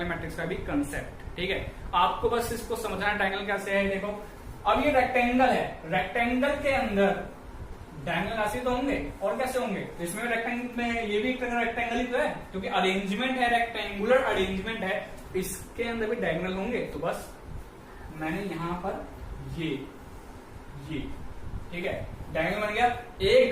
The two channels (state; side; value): identical; both; correlation 1.00